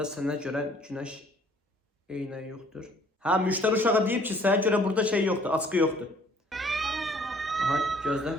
sənə görə güneş eynəyi yoxdur. Ha, müşteri uşağı deyib ki, sənə görə burada şey yoxdur, açqı yoxdur. Aha, gözlə.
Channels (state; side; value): normal; both; correlation 0.58